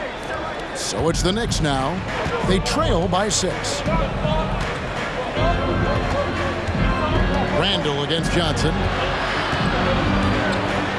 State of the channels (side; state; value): both; identical; correlation 1.00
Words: So it's the Knicks now. They trail by 6. Randall against Johnson.